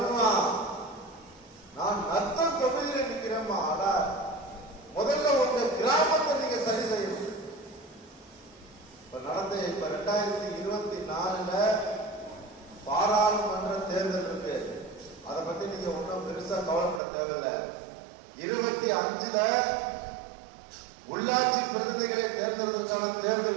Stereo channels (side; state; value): left; drops out; at 17.0 s